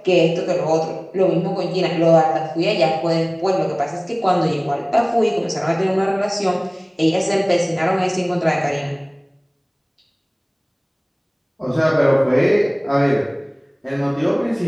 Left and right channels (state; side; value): identical; both; correlation 1.00